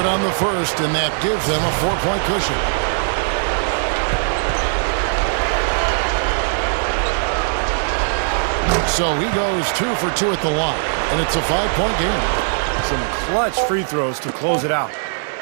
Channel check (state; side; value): silent; left; digital silence